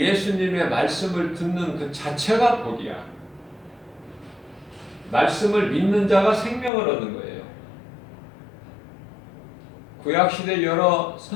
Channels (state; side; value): drops out; right; at 6.7 s